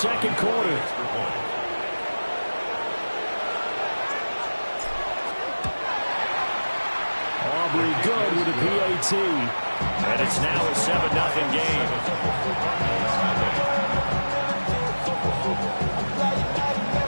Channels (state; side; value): inverted; both; correlation -1.00